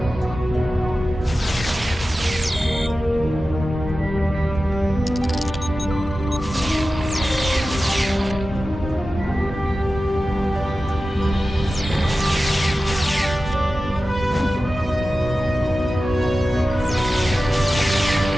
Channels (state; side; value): normal; both; correlation 0.94